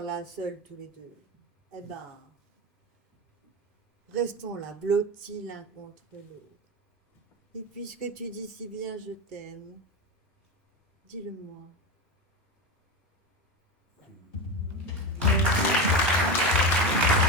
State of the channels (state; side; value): normal; both; correlation 0.19